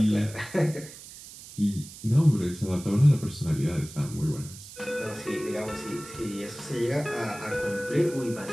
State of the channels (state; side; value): noise; right; hiss, 16 dB below the sound